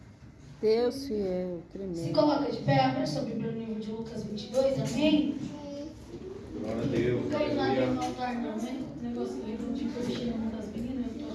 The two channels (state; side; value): identical; both; correlation 1.00